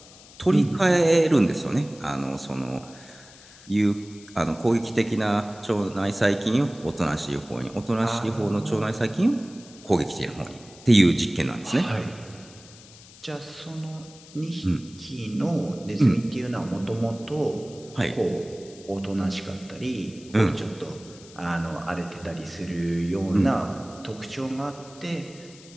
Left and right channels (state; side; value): noise; left; hiss, 21 dB below the sound